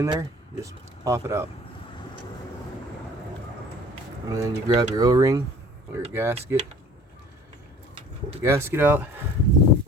there, just pop it out. And then you grab your O-ring or your gasket. Pull the gasket out.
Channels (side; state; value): both; normal; correlation 0.49